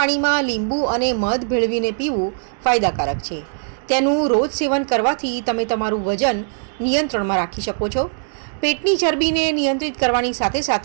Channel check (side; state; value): left; silent; digital silence